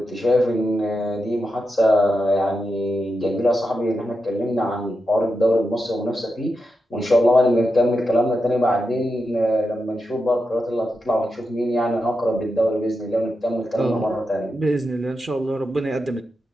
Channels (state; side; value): normal; both; correlation 0.87